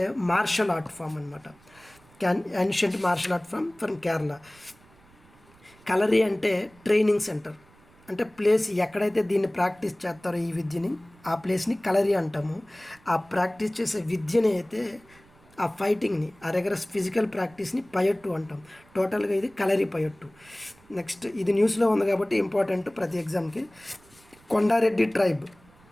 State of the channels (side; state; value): right; noise; rumble, 28 dB below the sound